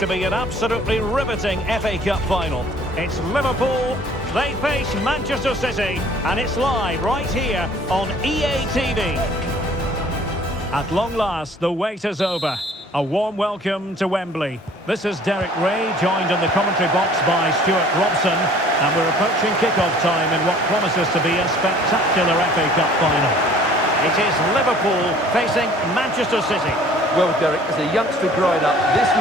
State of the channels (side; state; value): both; normal; correlation 0.53